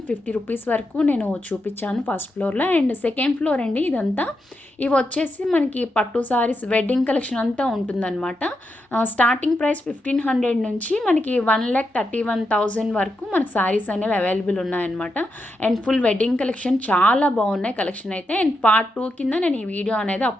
రూపీస్ వరకు నేను చూపించాను ఫస్ట్ ఫ్లోర్లో. అండ్ సెకండ్ ఫ్లోర్ అండి ఇదంతా. ఇవి వచ్చేసి మనకి పట్టు సారీస్ వెడ్డింగ్ కలెక్షన్ అంతా ఉంటుందన్నమాట. స్టార్టింగ్ ప్రైస్ 1,500 నుంచి మనకి 1,31,000 వరకు మనకి సారీస్ అనేవి అవైలబుల్ ఉన్నాయన్నమాట. అండ్ ఫుల్ వెడ్డింగ్ కలెక్షన్ చాలా బాగున్నాయి కలెక్షన్ అయితే. అండ్ పార్ట్ 2 కింద నేను ఈ వీడియో అనేది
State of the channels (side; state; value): both; normal; correlation 0.85